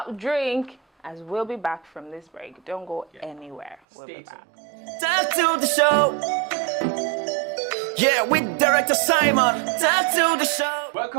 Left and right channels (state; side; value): drops out; left; at 3.8 s